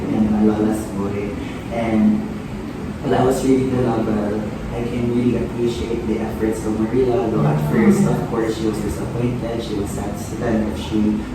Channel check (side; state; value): both; identical; correlation 1.00